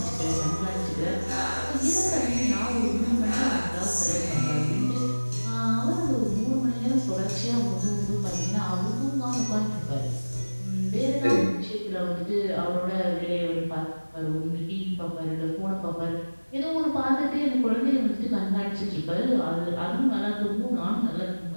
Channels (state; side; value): inverted; both; correlation -1.00